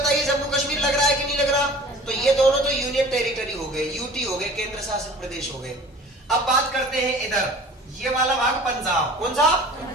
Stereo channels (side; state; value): both; normal; correlation 0.44